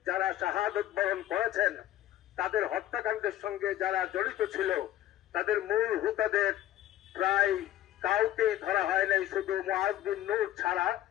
যারা শাহাদত বরণ করেছেন, তাদের হত্যাকাণ্ডের সঙ্গে যারা জড়িত ছিল তাদের মূল হুতাদের প্রায় কাউকে ধরা হয় নাই, শুধু মুআজ বিন নূর ছাড়া।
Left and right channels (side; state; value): right; quieter; 13.0 dB